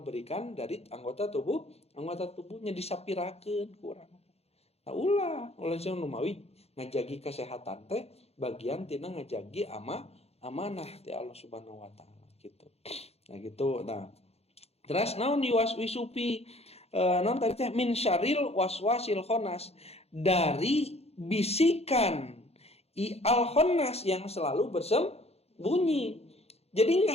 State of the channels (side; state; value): right; late; 0.30 ms